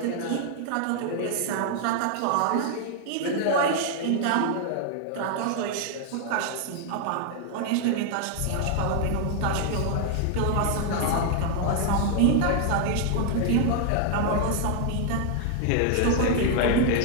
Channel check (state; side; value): different; both; correlation 0.00